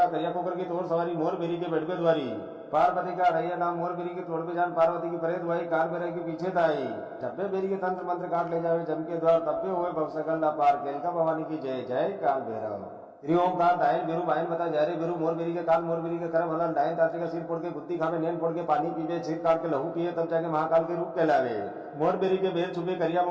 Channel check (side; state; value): both; identical; correlation 1.00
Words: करिया कुकर की तोर सवारी मोर बेरी के बेटवे द्वारी। पार्वती का रैया नाम मोर बेरी के तोड़ पे जान पार्वती की परे दुआई कार बेरे के पीछे ताई टप्पे बेरी के तंत्र मंत्र काट ले जावे जम के द्वार तप्पे हुए भवसकल ना पार केलका भवानी की जय जय काल भैरव। श्री ओमकार दायल बेरू बायन बता जा रे बेरू मोर बेरी के काल मोर बेरी के करम हलन डायन ताते का सिर फोड़ के गुत्ती खावे नैन फोड़ के पानी पीवे छीर काट के लहू पिए तब जाके महाकाल के रूप कहलावे। मोर बेरी के बेर छुपे करिया